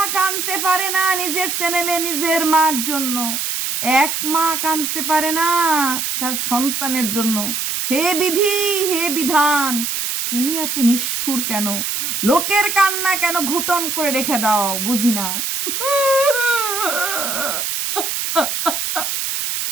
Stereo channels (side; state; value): right; noise; hiss, 2 dB below the sound